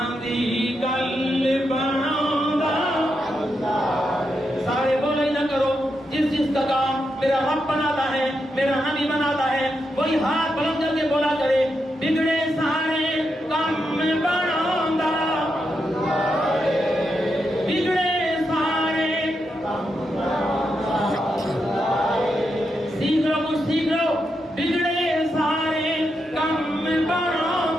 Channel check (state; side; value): normal; both; correlation 0.84